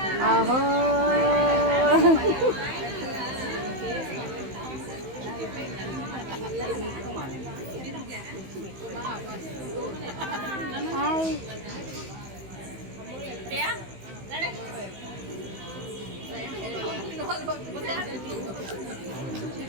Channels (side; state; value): left; late; 15 ms